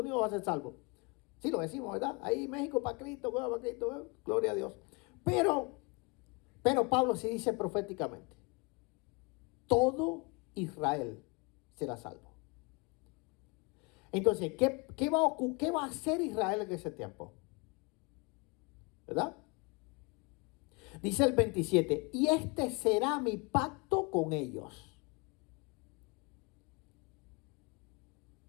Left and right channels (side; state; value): right; quieter; 29.7 dB